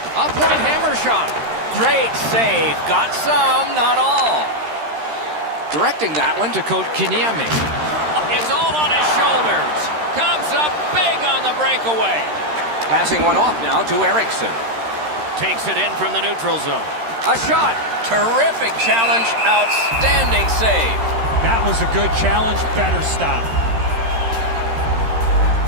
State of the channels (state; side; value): late; left; 13 ms